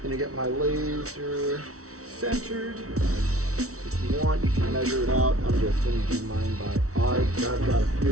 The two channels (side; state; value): left; late; 0.64 ms